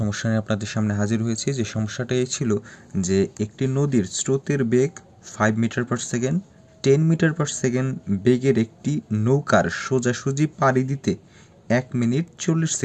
নিয়ে আপনাদের সামনে হাজির হয়েছি। যে সমস্যাটা এই ছিল যে একটি নদীর স্রোতের বেগ 5 metre per second, 10 metre per second বেগের একটি নৌকার সোজাসুজি পাড়ি দিতে 1 মিনিট 40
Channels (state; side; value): identical; both; correlation 1.00